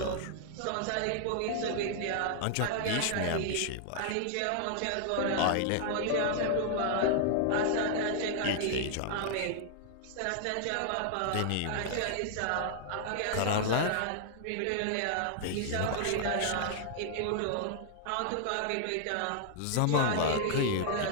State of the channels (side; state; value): both; different; correlation -0.01